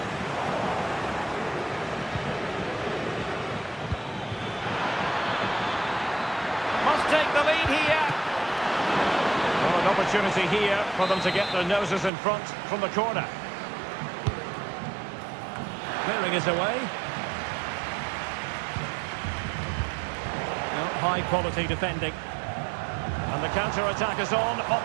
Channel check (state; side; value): drops out; left; at 12.1 s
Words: Must take the lead here. Well, an opportunity here for them to get their noses in front from the corner. Clearing is away. No, high quality defending. And the counter-attack is on.